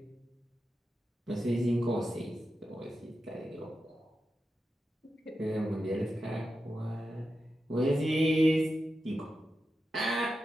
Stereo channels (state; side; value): normal; both; correlation 0.90